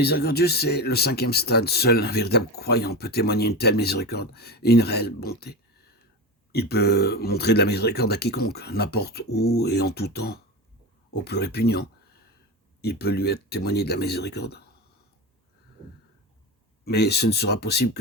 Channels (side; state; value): both; normal; correlation 0.23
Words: c'est le 5e stade. Seul un véritable croyant peut témoigner une telle miséricorde et une réelle bonté. Il peut montrer de la miséricorde à quiconque, n'importe où et en tout temps, au plus répugnant. Il peut lui être témoigné de la miséricorde. Mais ce ne sera possible